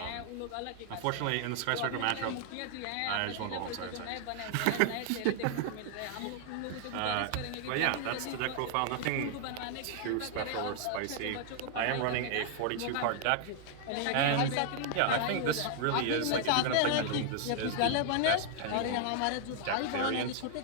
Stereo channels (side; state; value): both; different; correlation 0.00